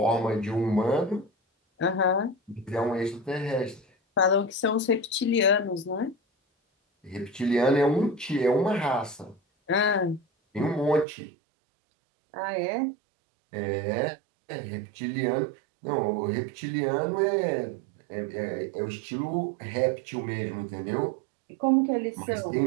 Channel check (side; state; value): left; drops out; at 11.1 s